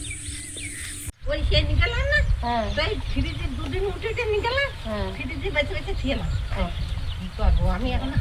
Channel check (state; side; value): identical; both; correlation 1.00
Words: ওই সে নিকালাম না, হ্যাঁ তাই ফ্রিজে দুদিন উঠে নিকালাম, হ্যাঁ ফ্রিজে বেঁচে বেঁচে ছিলাম। হ্যাঁ কি করবো, আমি এখন